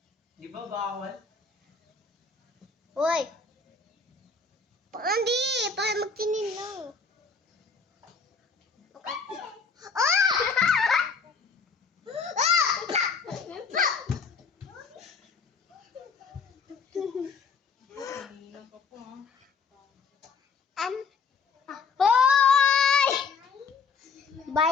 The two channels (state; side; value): quieter; right; 5.0 dB